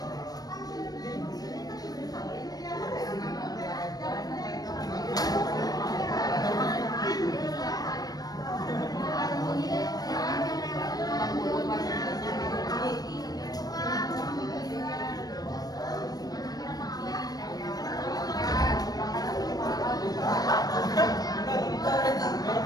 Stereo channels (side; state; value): right; late; 0.19 ms